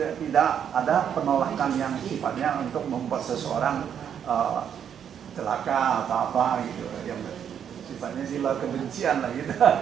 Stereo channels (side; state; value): left; quieter; 8.5 dB